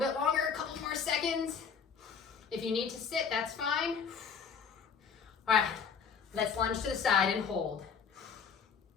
longer, a couple more seconds. If you need to sit, that's fine. All right, let's lunge to the side and hold.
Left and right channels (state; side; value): quieter; right; 6.4 dB